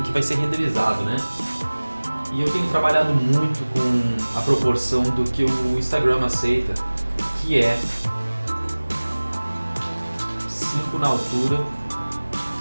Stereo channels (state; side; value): inverted; both; correlation -1.00